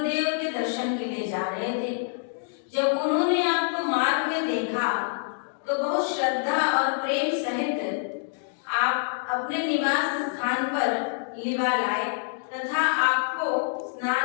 के दर्शन के लिए जा रहे थे। जब उन्होंने आपको मार्ग में देखा तो बहुत श्रद्धा और प्रेम सहित आप अपने निवास स्थान पर लिवा लाए तथा आपको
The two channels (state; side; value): silent; right; digital silence